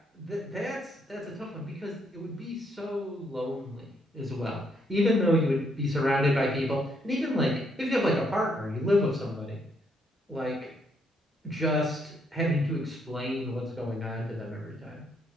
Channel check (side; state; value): both; normal; correlation 0.73